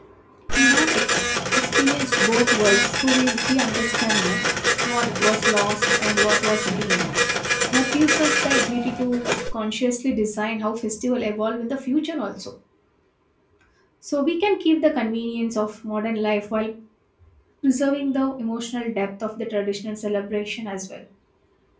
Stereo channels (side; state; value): both; identical; correlation 1.00